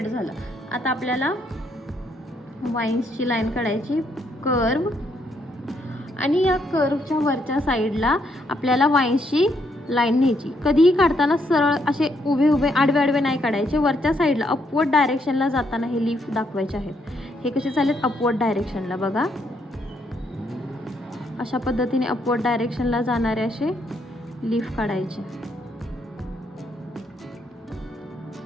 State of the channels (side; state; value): both; normal; correlation 0.74